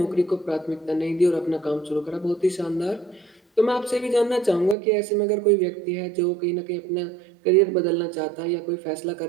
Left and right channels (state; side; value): drops out; left; at 4.8 s